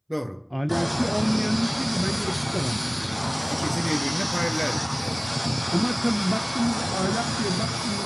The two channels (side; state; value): both; identical; correlation 1.00